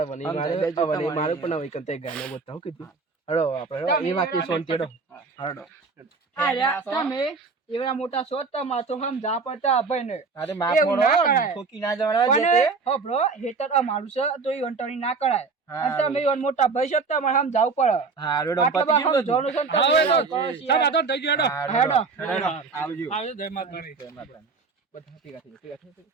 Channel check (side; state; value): left; quieter; 4.5 dB